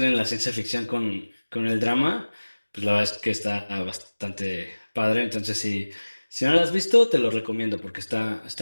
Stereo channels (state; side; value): inverted; both; correlation -1.00